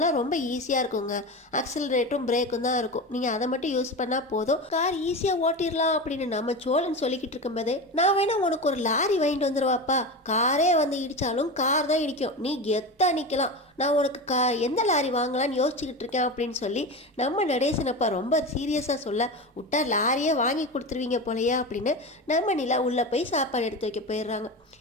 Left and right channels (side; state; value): both; normal; correlation 0.24